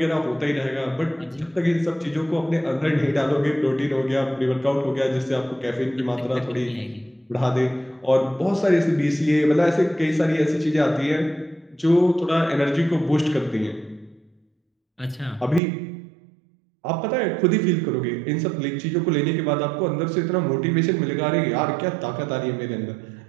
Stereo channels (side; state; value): left; drops out; at 15.6 s